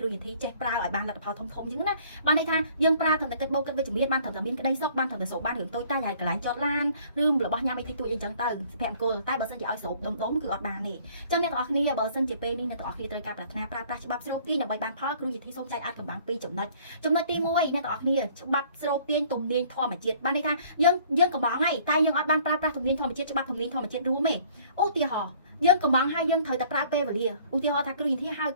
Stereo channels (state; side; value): inverted; both; correlation -0.56